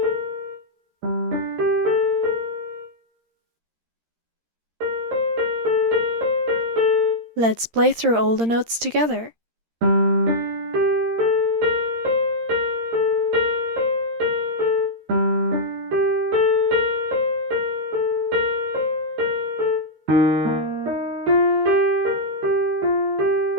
Let's play through all the notes together.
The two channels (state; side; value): late; left; 13 ms